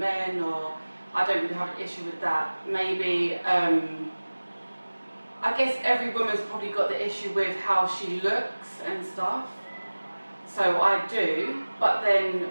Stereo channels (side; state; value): both; inverted; correlation -1.00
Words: or I don't really have an issue with that. Maybe, I guess every woman's probably got the issue with how she looks and stuff. So I do, but